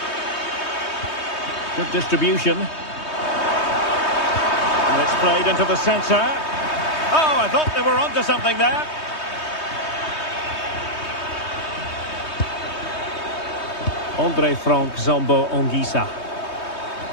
Good distribution. And it's played into the centre. Oh, I thought they were onto something there. Andre Frank Zombo Onguisa.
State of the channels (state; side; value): late; right; 3.2 ms